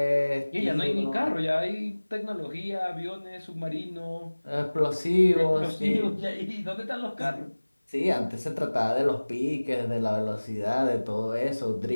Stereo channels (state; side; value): inverted; both; correlation -1.00